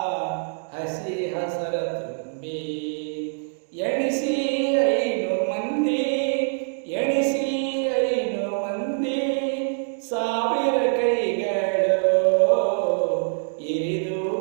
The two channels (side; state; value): left; silent; digital silence